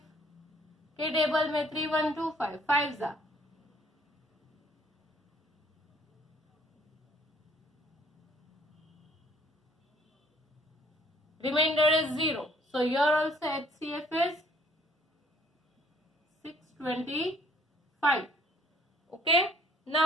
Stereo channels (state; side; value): normal; both; correlation 0.60